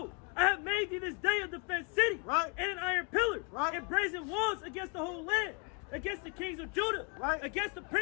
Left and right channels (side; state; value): right; quieter; 31.8 dB